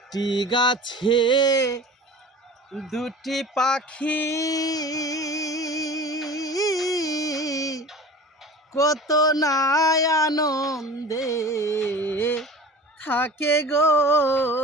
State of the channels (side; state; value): both; normal; correlation 0.38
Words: গাছে দুটি পাখি কত নাই আনন্দে থাকে গো